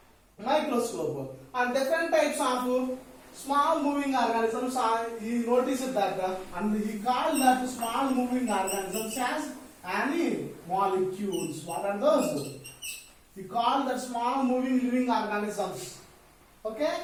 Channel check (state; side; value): identical; both; correlation 1.00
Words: microscope, and different types of small moving organisms he noticed that and he called that small moving organisms as animalcules. What are those? He called that small moving living organisms.